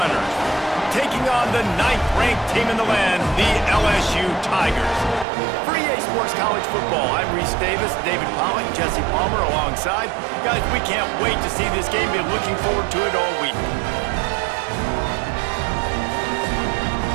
taking on the 9th-ranked team in the land, the LSU Tigers. For EA Sports College Football, I'm Reese Davis, David Pollock, Jesse Palmer alongside. Guys, we can't wait to see this game. Been looking forward to it all week.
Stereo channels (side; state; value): left; drops out; at 5.2 s